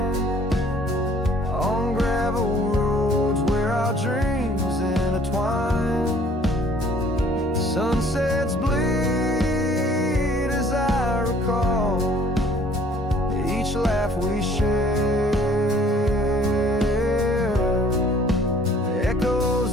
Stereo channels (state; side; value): normal; both; correlation 0.56